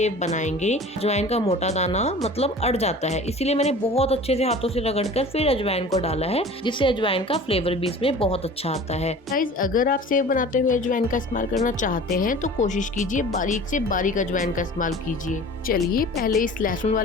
बनाएंगे अजवाइन का मोटा दाना मतलब अड़ जाता है, इसीलिए मैंने बहुत अच्छे से हाथों से रगड़कर फिर अजवाइन को डाला है, जिससे अजवाइन का फ्लेवर भी इसमें बहुत अच्छा आता है। गाइस, अगर आप सेव बनाते हुए अजवाइन का इस्तेमाल करना चाहते हैं तो कोशिश कीजिए बारीक से बारीक अजवाइन का इस्तेमाल कीजिए। चलिए पहले इस लहसुन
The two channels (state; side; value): normal; both; correlation 0.41